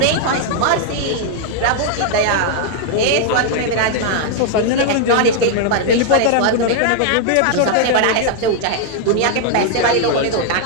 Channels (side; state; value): both; different; correlation 0.00